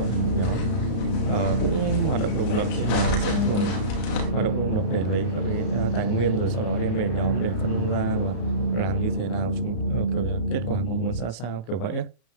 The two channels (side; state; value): right; late; 33 ms